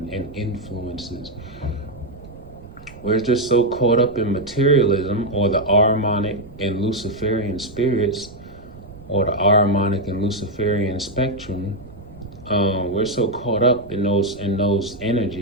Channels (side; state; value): right; noise; rumble, 19 dB below the sound